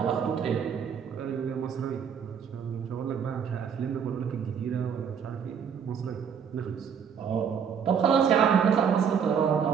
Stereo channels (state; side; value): quieter; left; 7.3 dB